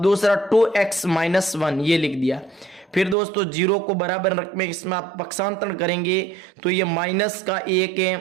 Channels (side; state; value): left; drops out; at 3.2 s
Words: दूसरा 2x माइनस 1 ये लिख दिया। फिर दोस्तों 0 को बराबर रख में इसमें आप पक्षांतरण करेंगे तो ये माइनस का 1